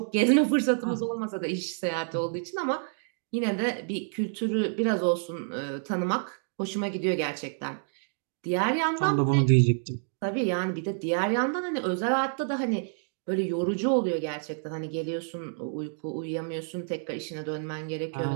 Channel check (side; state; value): left; silent; digital silence